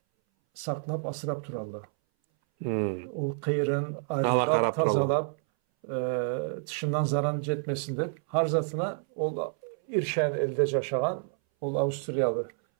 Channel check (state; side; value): silent; left; 59 dB below the other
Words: saklap asırap turallı. O kıyırın ayrılap tazalap dışından zaran jetmesinde harzatına ol İrşen elde yaşayan ol Avusturyalı